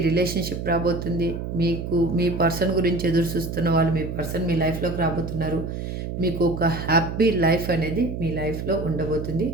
రిలేషన్షిప్ రాబోతుంది. మీకు మీ పర్సన్ గురించి ఎదురు చూస్తున్న వాళ్ళు మీ పర్సన్ మీ లైఫ్లోకి రాబోతున్నారు. మీకు ఒక హ్యాపీ లైఫ్ అనేది మీ లైఫ్లో ఉండబోతుంది.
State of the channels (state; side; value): noise; right; hum, 5 dB below the sound